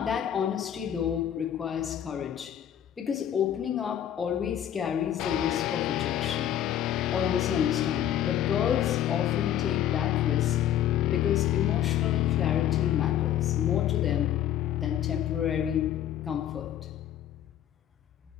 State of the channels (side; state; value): right; quieter; 10.8 dB